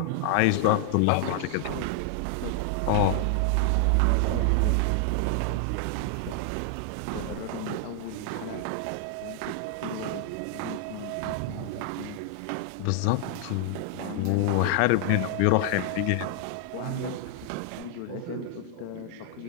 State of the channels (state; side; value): different; both; correlation 0.00